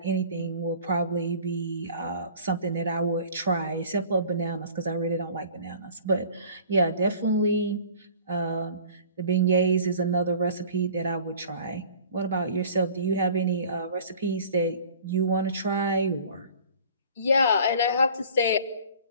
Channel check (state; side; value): inverted; both; correlation -0.47